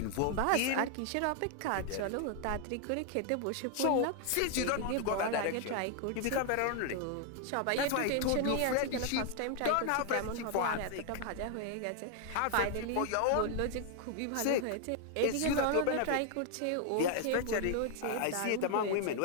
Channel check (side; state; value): both; different; correlation 0.00